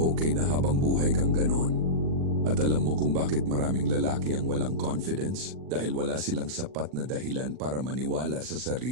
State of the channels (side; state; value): left; late; 40 ms